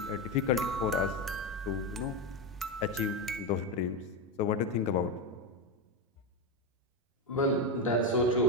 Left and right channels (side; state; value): both; normal; correlation 0.12